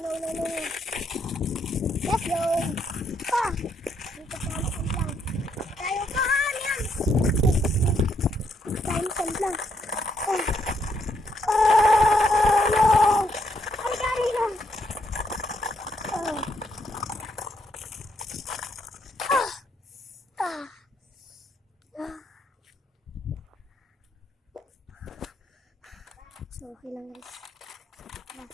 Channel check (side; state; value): both; normal; correlation 0.74